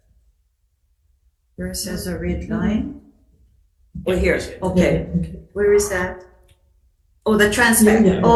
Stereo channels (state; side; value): identical; both; correlation 1.00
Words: Where it says a red line? Oh, here, okay. Where is that? Oh, the Transpac. Yeah, yeah.